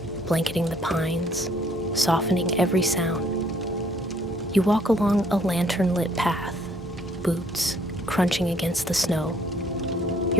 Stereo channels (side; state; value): both; normal; correlation 0.64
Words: blanketing the pines, softening every sound. You walk along a lantern-lit path, boots crunching against the snow,